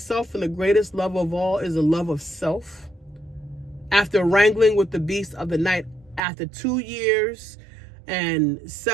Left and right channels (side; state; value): left; drops out; at 6.2 s